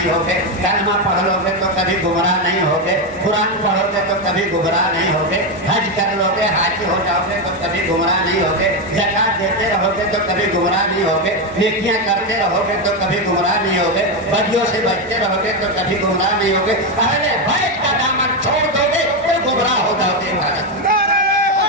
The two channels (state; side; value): normal; both; correlation 0.08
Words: ہوگے، کلمہ پڑھ لو گے تو کبھی گمراہ نہیں ہوگے، قرآن پڑھو گے تو کبھی گمراہ نہیں ہوگے، حج کر لو گے، حاجی ہو جاؤ گے تو کبھی گمراہ نہیں ہوگے، زکات دیتے رہو گے تو کبھی گمراہ نہیں ہوگے، نیکیاں کرتے رہو گے تو کبھی گمراہ نہیں ہوگے، بدیوں سے بچتے رہو گے تو کبھی گمراہ نہیں ہوگے، اہل بیت کا دامن چھوڑ دو گے تو گمراہ ہو جاؤ گے۔